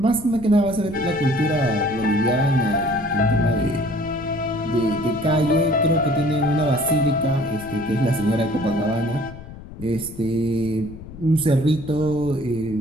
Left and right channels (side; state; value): left; noise; rumble, 15 dB below the sound